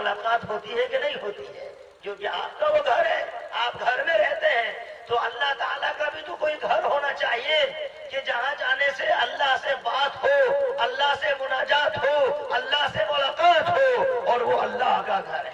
ہوتی ہے کہ نہیں ہوتی ہے؟ کیونکہ آپ کا وہ گھر ہے، آپ گھر میں رہتے ہیں۔ تو اللہ تعالیٰ کا بھی تو کوئی گھر ہونا چاہیے کہ جہاں جانے سے اللہ سے بات ہو، اللہ سے مناجات ہو، اللہ سے ملاقات ہو، اور وہ اللہ کا گھر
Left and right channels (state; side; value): identical; both; correlation 1.00